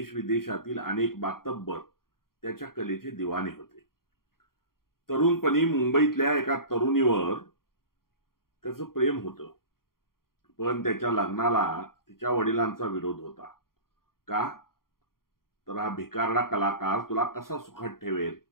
विदेशातील अनेक मातब्बर त्याच्या कलेचे दिवाने होते. तरुणपणी मुंबईतल्या एका तरुणीवर त्याचं प्रेम होतं. पण त्याच्या लग्नाला तिच्या वडिलांचा विरोध होता. का? तर हा भिकारडा कलाकार तुला कसा सुखात ठेवेल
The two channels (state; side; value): late; right; 0.92 ms